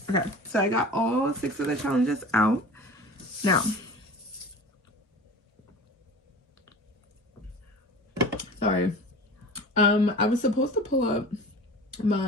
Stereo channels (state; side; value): normal; both; correlation 0.38